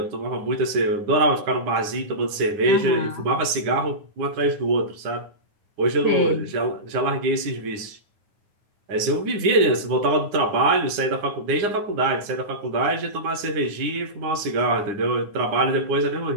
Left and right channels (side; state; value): left; late; 9.8 ms